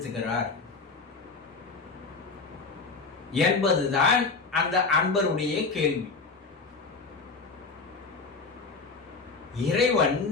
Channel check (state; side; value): quieter; right; 4.3 dB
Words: என்பதுதான் அந்த அன்பருடைய கேள்வி. இறைவன்